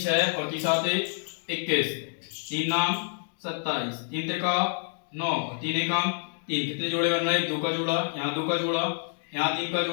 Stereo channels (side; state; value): right; silent; 59 dB below the other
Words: और 3 साते 21, 3 नाम 27, 3 तिरका 9 और 3 एकम 3, कितने जोड़े बन रहे हैं 2 का जोड़ा, यहाँ 2 का जोड़ा, यहाँ 3 का